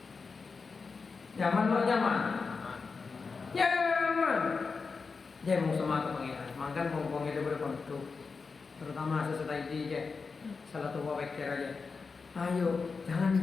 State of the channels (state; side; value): quieter; right; 4.7 dB